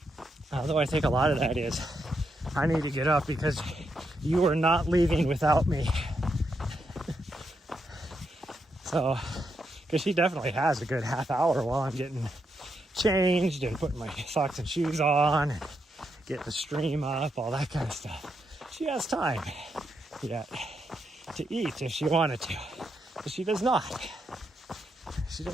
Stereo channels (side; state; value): both; normal; correlation 0.82